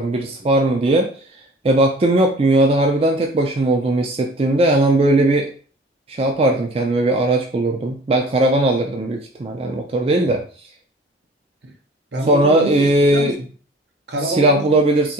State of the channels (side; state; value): both; normal; correlation 0.46